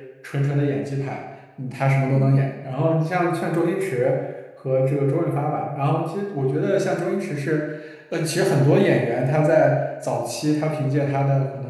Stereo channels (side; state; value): both; identical; correlation 1.00